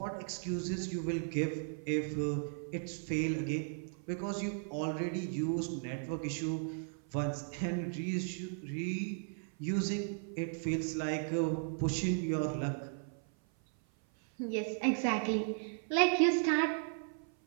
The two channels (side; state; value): left; silent; 54 dB below the other